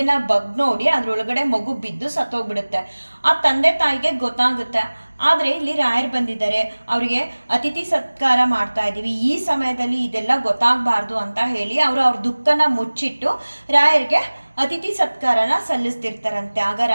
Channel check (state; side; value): inverted; both; correlation -1.00